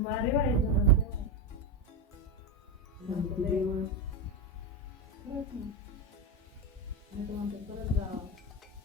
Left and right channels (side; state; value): both; normal; correlation 0.12